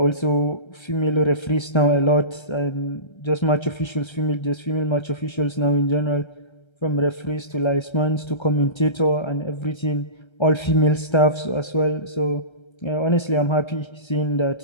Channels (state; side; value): late; right; 1.3 ms